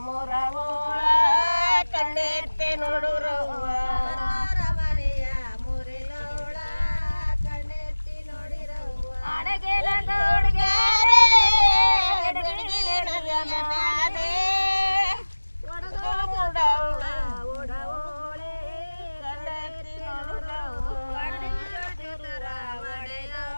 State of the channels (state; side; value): inverted; both; correlation -1.00